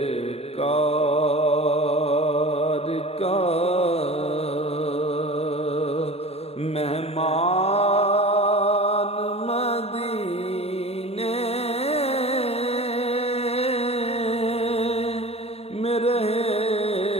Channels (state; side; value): late; right; 0.29 ms